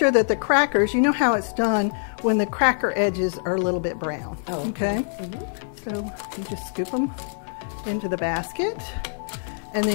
that the crackers, you know how it's done when the cracker edges are a little bit brown. Oh, okay? So you just scoop them into the basket, and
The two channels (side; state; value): right; silent; 62 dB below the other